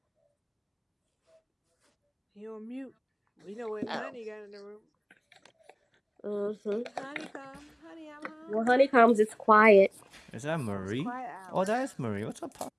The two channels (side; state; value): both; identical; correlation 1.00